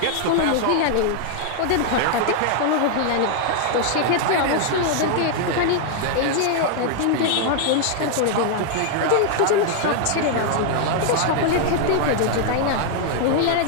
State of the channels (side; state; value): both; different; correlation 0.00